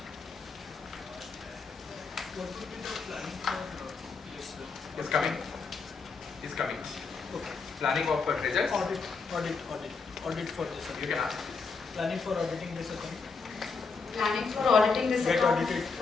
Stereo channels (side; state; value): right; quieter; 4.7 dB